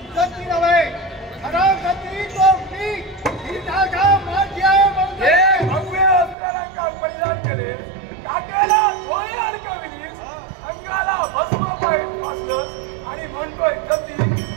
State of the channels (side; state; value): left; drops out; at 6.4 s